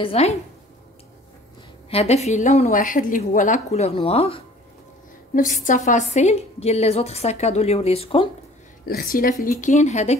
هذا فيه لون واحد اللي هو لا كولور نوار، نفس التفاصيل ديال لي زوطخ ساكادو اللي وريتكم. الاختلاف اللي كاين هذا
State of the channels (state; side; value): normal; both; correlation 0.50